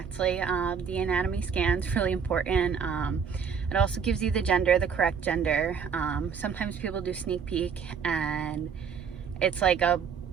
The anatomy scan's really important. It also gives you the gender, the correct gender. Sometimes people do sneak peek, and it's like a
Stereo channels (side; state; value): left; quieter; 6.7 dB